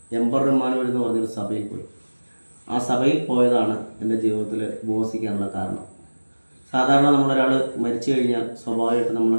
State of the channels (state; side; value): inverted; both; correlation -1.00